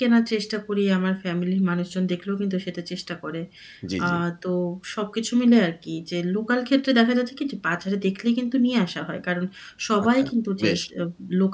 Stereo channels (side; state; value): both; identical; correlation 1.00